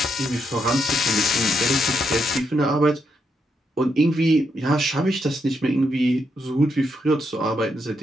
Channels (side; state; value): both; normal; correlation 0.79